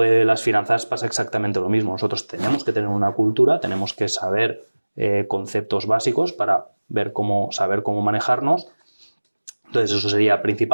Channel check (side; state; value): both; inverted; correlation -1.00